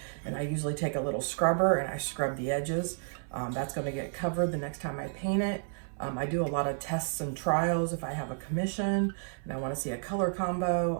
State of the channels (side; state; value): left; silent; 57 dB below the other